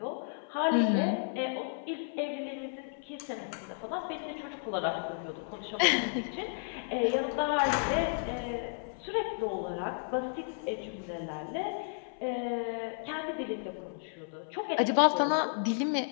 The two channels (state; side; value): silent; right; 56 dB below the other